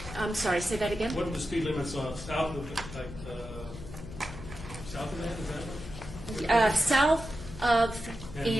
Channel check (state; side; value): noise; left; hum, 13 dB below the sound